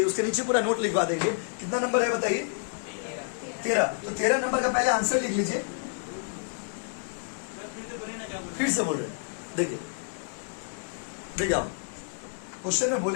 उसके नीचे पूरा नोट लिखवा देंगे। कितना नंबर है बताइए, 13। तो 13 नंबर का पहले आंसर लिख लीजिए, फिर से बोल रहे देखिए आप क्वेश्चन में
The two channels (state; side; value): silent; right; digital silence